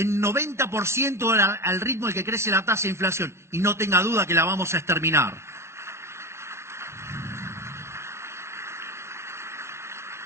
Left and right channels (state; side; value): late; left; 0.13 ms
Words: 90% al ritmo al que crece la tasa de inflación. Y no tenga duda que la vamos a exterminar.